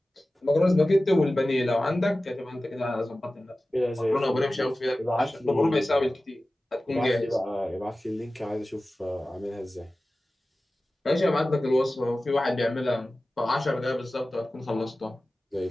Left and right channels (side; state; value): both; normal; correlation 0.96